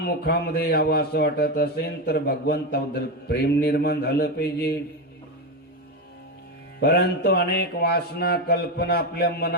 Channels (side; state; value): both; normal; correlation 0.12